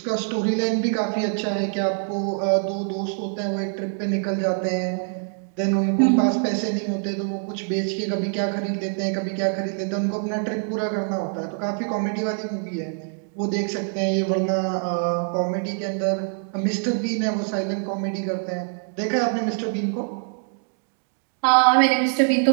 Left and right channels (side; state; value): left; silent; 60 dB below the other